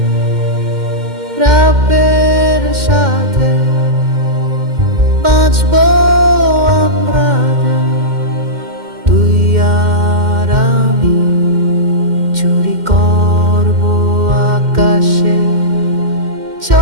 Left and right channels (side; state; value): left; late; 2.1 ms